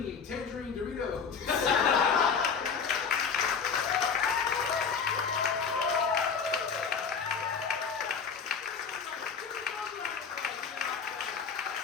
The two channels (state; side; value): quieter; right; 6.1 dB